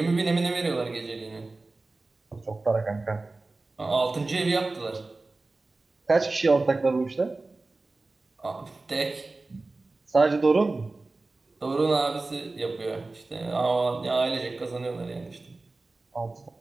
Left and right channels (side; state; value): left; quieter; 3.3 dB